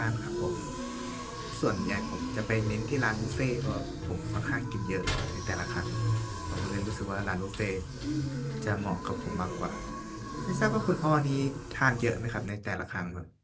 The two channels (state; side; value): identical; both; correlation 1.00